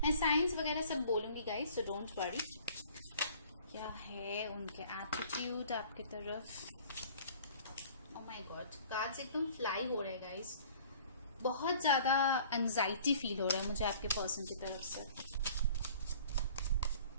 मैं साइंस वगैरह सब बोलूंगी गाइस, सो डोंट वरी। क्या है उनके एटीट्यूड आपके तरफ? ओ माय गॉड, कार्ड्स एकदम फ्लाई हो रहे हैं गाइस। बहुत ज्यादा एंजाइटी फील हो रहा है मुझे आपके पर्सन की तरफ से।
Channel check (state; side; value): inverted; both; correlation -0.50